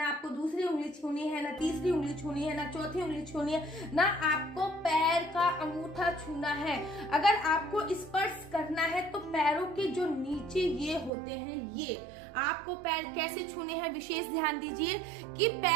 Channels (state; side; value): drops out; left; at 11.1 s